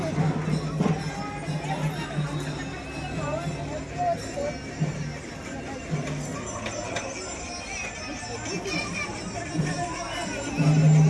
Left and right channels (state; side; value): identical; both; correlation 1.00